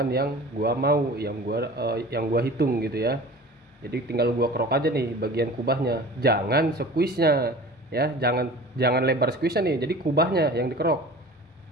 yang gua mau, yang gua hitung gitu ya. Jadi tinggal gua kerok aja nih bagian kubahnya, jangan squeeze nya ya, jangan lebar squeeze nya nih, jadi kubahnya yang dikerok.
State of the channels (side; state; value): both; normal; correlation 0.40